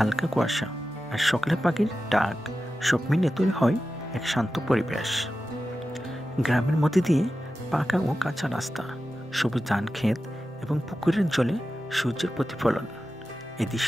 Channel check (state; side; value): normal; both; correlation 0.93